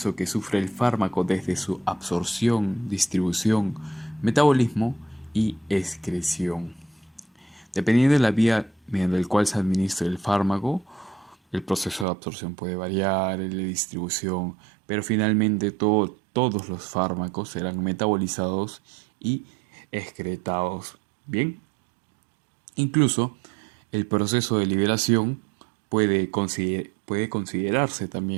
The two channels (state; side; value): drops out; left; at 12.1 s